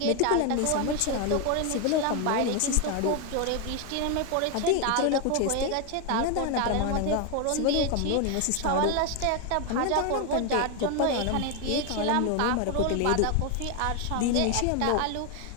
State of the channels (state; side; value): different; both; correlation 0.01